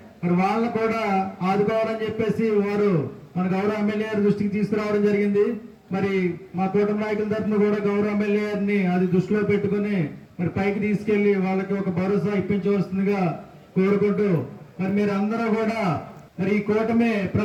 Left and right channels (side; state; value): both; identical; correlation 1.00